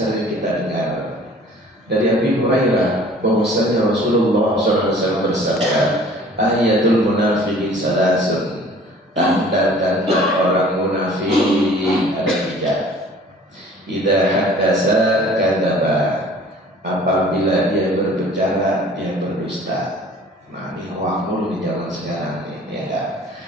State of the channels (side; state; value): both; normal; correlation 0.50